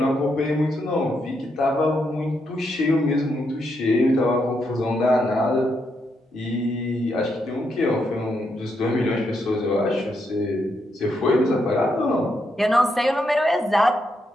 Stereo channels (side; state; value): both; normal; correlation 0.80